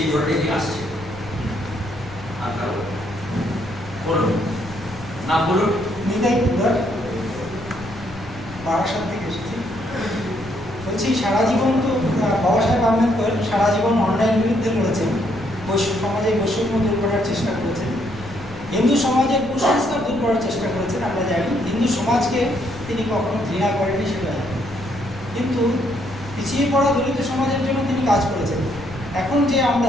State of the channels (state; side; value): noise; left; rumble, 18 dB below the sound